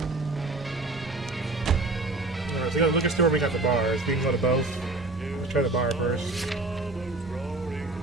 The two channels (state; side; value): quieter; left; 3.0 dB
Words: So we got the liquor store, we got the bars. We can go to both. Let's try the bar first.